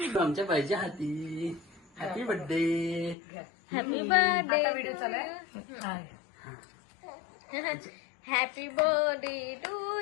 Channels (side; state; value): right; drops out; at 3.2 s